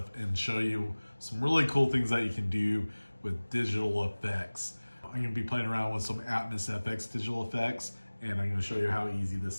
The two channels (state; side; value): inverted; both; correlation -1.00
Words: and show you some really cool things that you can do with digital effects. I'm gonna be playing around with some Atmosfx digital effects, and I'm gonna show you how easy